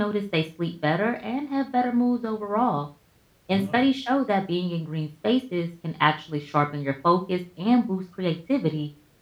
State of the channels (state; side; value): identical; both; correlation 1.00